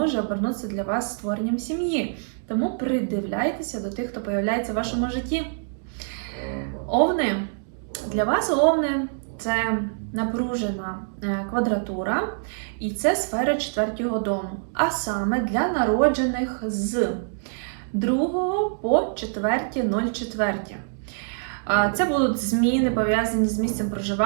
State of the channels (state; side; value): silent; left; digital silence